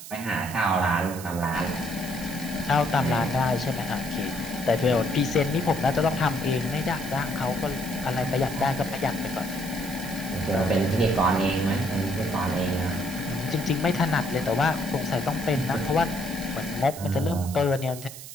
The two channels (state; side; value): noise; right; hiss, 13 dB below the sound